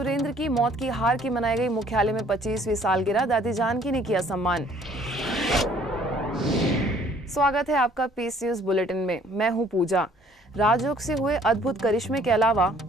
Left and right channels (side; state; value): both; normal; correlation 0.59